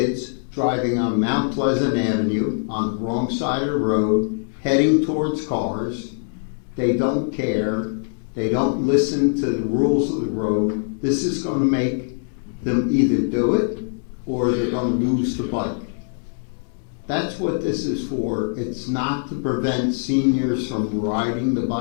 driving on Mount Pleasant Avenue on the wrong side of the road, heading towards cars. They don't care. They don't listen to the rules of the road. This is going to make them either do it or they're going to lose the bike. That's what this is for. It's not to prevent seniors from riding the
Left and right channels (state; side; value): silent; right; digital silence